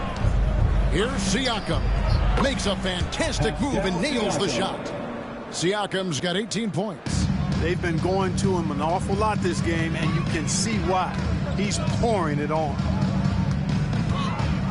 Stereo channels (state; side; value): identical; both; correlation 1.00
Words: Here's Siakam. Makes a fantastic move and nails the shot. Siakam's got 18 points. They've been going to him an awful lot this game, and you can see why. He's pouring it on.